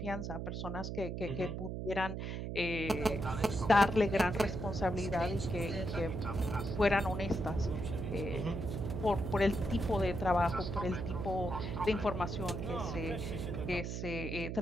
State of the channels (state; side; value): noise; right; hum, 4 dB below the sound